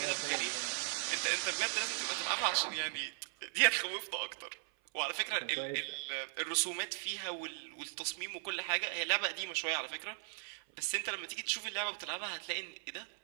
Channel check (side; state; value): left; silent; 52 dB below the other